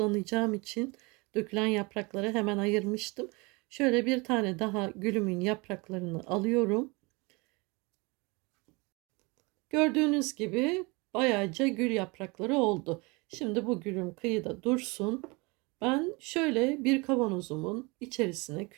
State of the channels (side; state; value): left; quieter; 26.9 dB